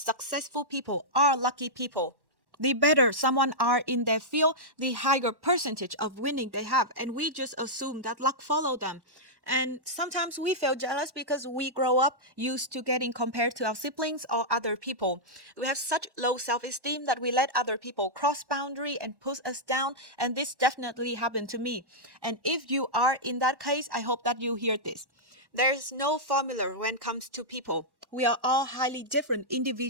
people are lucky people. The better someone are in their field, the higher percentage of winning they have, and we just assume that luck follow them. And sometimes we feel jealous because we grow up used to getting compared to our siblings or other people. We have such low self-esteem that we let other people cross boundary and push us down, and this definitely happened to me. And if you are in that case, I hope that you hear this. There's no formula when it comes to people. We are all highly different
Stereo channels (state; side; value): late; left; 1.1 ms